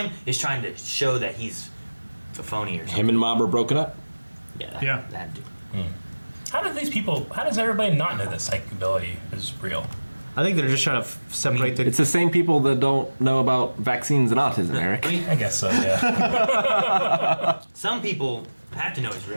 is trying to show that he's a phony or something. Him and Mob are broken up? Yeah, that dude. How does everybody not know that psychic ability is real? I think they're just trying to separate the... It's the same people that don't know about vaccines and autism, Eric. I guess so, yeah. Some people have to know it's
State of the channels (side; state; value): both; inverted; correlation -1.00